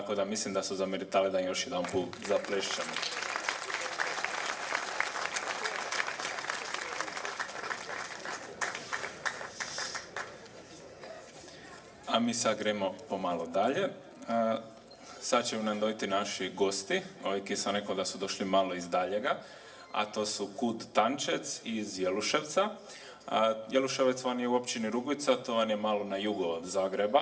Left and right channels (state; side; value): identical; both; correlation 1.00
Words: da mislim da su zameritali da još jedan put zaplešćemo. A mi sad gremo pomalo dalje. Sad će nam dojti naši gosti, ovi ki sam rekao da su došli malo iz daljega, a to su Kud Tančec iz Jeluševca. Jeluševec vam je u općini Rugvica, to vam je malo na jugo od